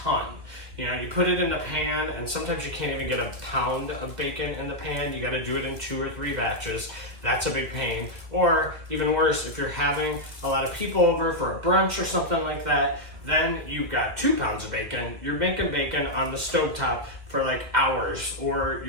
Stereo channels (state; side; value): late; left; 1.9 ms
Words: You know, you put it in the pan, and sometimes you can't even get a pound of bacon in the pan. You got to do it in 2 or 3 batches. That's a big pain. Or even worse, if you're having a lot of people over for a brunch or something like that, then you've got 2 pounds of bacon. You're making bacon on the stovetop for like hours, or